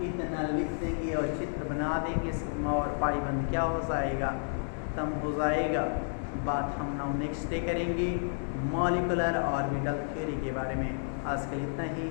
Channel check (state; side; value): silent; right; digital silence